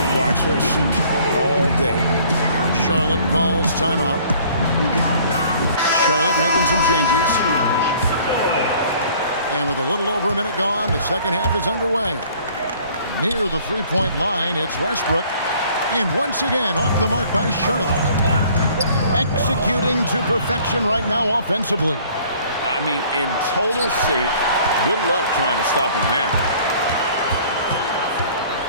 watch her shoot all day. Charlotte calls timeout. Charlotte making some changes. And with a little over a minute gone, the second half is underway. Near the three-point line, it's Westbrook. And once again, off the mark by Charlotte. Executing to perfection right now offensively. I mean, in total sync. Good luck trying to stop him now.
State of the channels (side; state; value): both; inverted; correlation -0.55